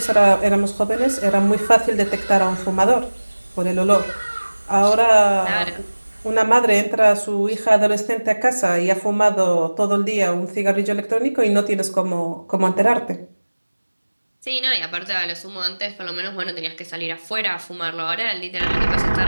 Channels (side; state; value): both; inverted; correlation -1.00